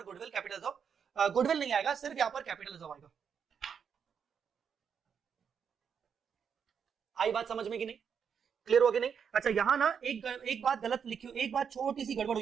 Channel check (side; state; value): left; quieter; 7.1 dB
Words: गुडविल कैपिटल रिजर्व, गुडविल नहीं आएगा, सिर्फ यहां पर कैपिटल रिजर्व आएगा। आई बात समझ में कि नहीं? क्लियर हो कि नहीं? अच्छा, यहां ना एक बात गलत लिखी, एक बात छोटी सी गड़बड़